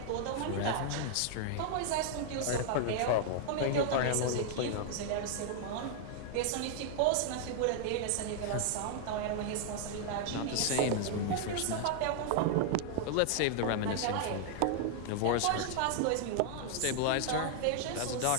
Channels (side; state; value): both; different; correlation 0.00